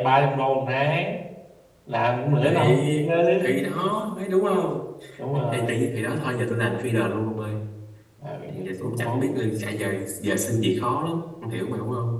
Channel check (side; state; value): both; identical; correlation 1.00